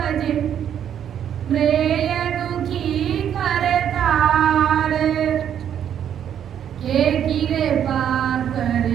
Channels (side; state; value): left; quieter; 9.4 dB